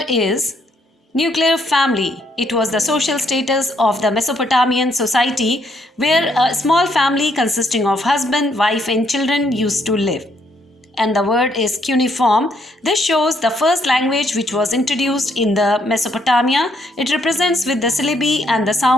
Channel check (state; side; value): normal; both; correlation 0.72